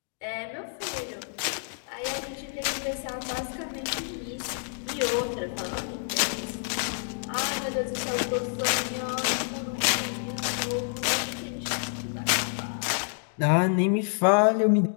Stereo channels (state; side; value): silent; right; digital silence